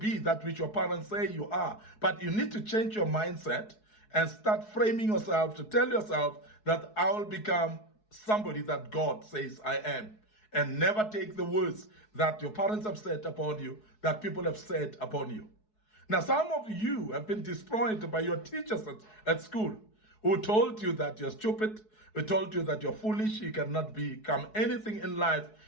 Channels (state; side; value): late; right; 4.7 ms